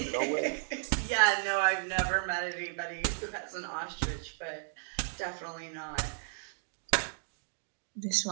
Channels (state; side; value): silent; left; digital silence